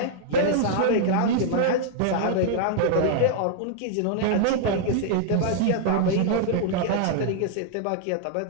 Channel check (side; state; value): both; different; correlation -0.01